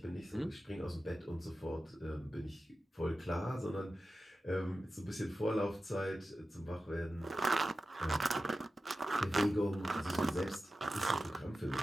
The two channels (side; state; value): both; normal; correlation 0.93